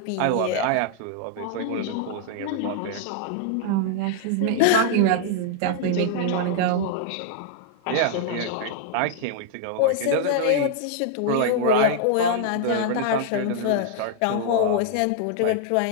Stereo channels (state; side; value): different; both; correlation -0.01